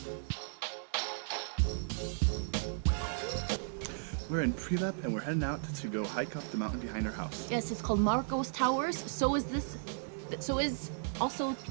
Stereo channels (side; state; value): left; silent; 54 dB below the other